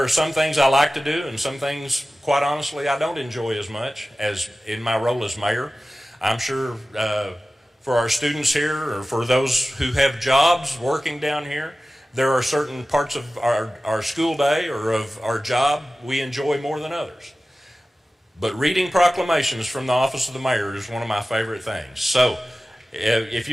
some things I like to do, and some things, quite honestly, I don't enjoy as much as in my role as mayor. I'm sure for our students here, or for those who have jobs working down here, there are certain parts of our school day or of our job we enjoy more than others. But reading proclamations from the office of the mayor is one of my favorite things. So if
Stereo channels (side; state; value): both; normal; correlation 0.96